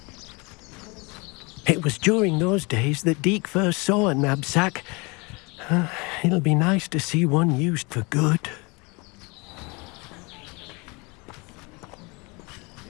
It was during those days that Deke first saw a knapsack. It'll be nice to see one used for good.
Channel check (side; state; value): right; quieter; 28.0 dB